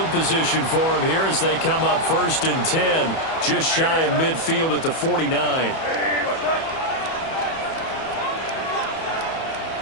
position for him here as they come up 1st and 10, just shy of midfield at the 49.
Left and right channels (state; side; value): late; right; 31 ms